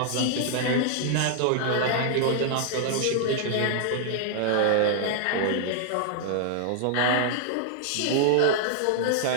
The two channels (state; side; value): different; both; correlation -0.01